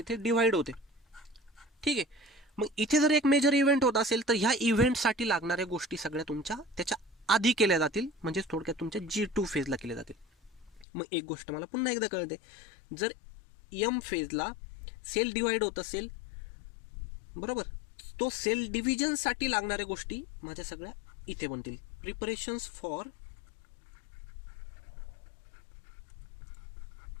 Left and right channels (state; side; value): drops out; right; at 10.9 s